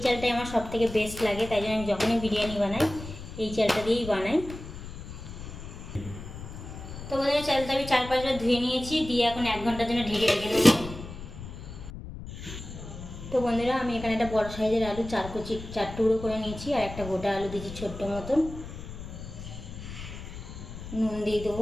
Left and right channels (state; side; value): noise; left; rumble, 11 dB below the sound